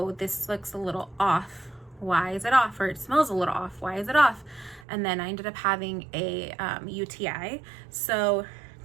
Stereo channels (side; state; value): left; drops out; at 4.9 s